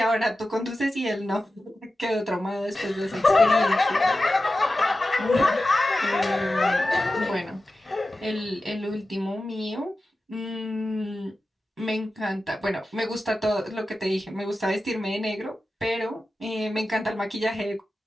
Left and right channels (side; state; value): both; normal; correlation 0.93